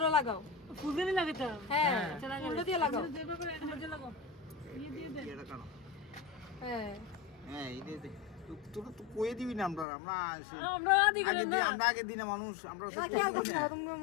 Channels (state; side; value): drops out; right; at 9.9 s